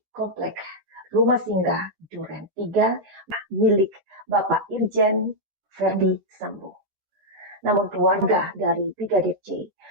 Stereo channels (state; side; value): late; left; 13 ms